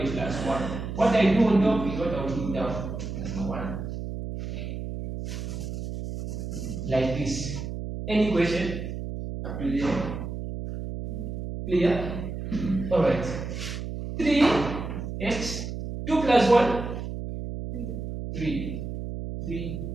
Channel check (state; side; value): noise; right; hum, 6 dB below the sound